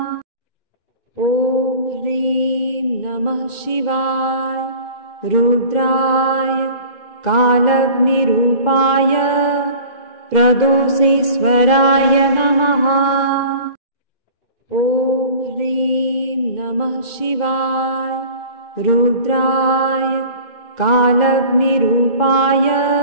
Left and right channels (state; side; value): late; right; 2.1 ms